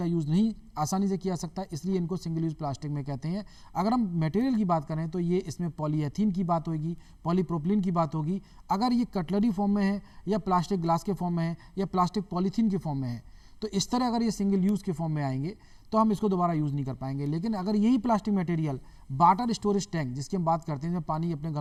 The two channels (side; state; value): both; identical; correlation 1.00